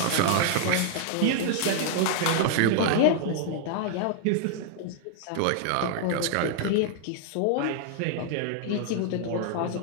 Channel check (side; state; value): both; different; correlation 0.00